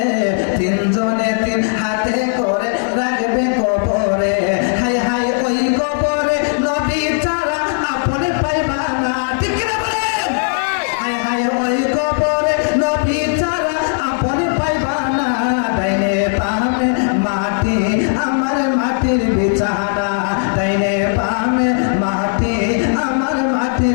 3 জনে 3 হাতে করে রাখবে কবরে। হাই হাই ওই কবরে নবী ছাড়া আপনি পাইবা না। ঠিক কিনা বলেন? হাই হাই ওই কবরে নবী ছাড়া আপনি পাইবা না। ডাইনে বামে মাটি, আমার মাটির বিছানা, ডাইনে বামে মাটি, আমার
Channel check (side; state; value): right; silent; digital silence